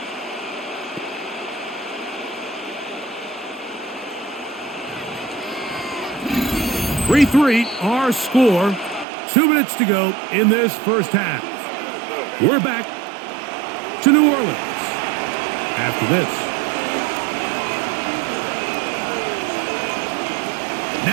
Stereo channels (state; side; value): drops out; left; at 9.1 s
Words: (3-3) our score. 2 minutes to go in this first half. We're back to New Orleans after this.